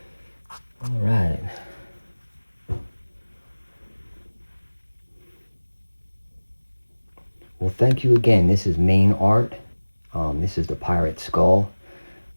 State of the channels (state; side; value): inverted; both; correlation -1.00